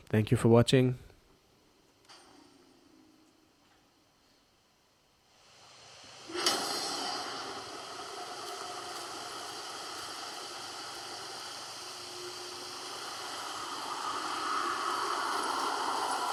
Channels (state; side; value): identical; both; correlation 1.00